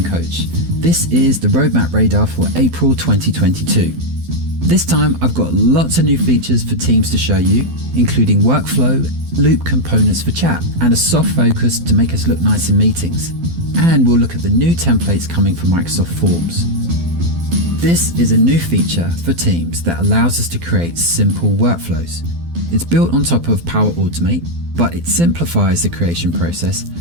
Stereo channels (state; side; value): late; left; 12 ms